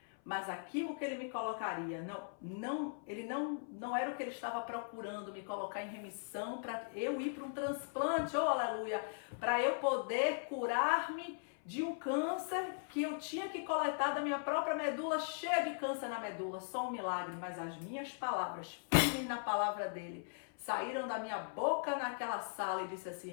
mas aquilo que ele me colocaria, ele não era o que ele estava procurando, me colocar em remissão para eu ir para um transplante, oh aleluia, para eu poder curar-me de um câncer que eu tinha que coletar da minha própria medula, cheia de câncer na medula, só um milagre, mas as minhas palavras, firmes na palavra dele, saíram da minha boca naquela sala e disse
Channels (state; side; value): silent; right; 52 dB below the other